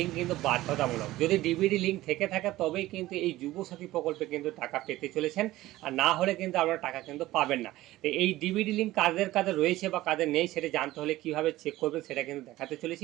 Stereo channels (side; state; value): left; quieter; 16.7 dB